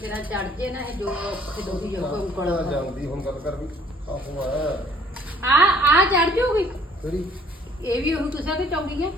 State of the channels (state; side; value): normal; both; correlation 0.59